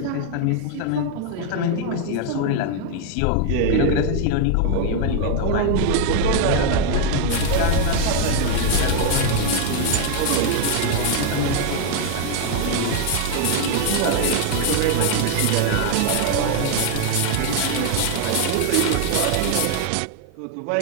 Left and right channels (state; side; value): different; both; correlation 0.00